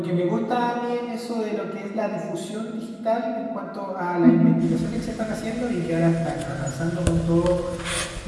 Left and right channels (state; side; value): identical; both; correlation 1.00